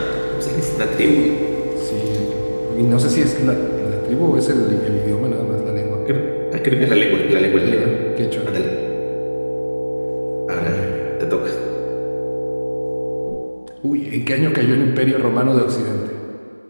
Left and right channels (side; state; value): both; inverted; correlation -1.00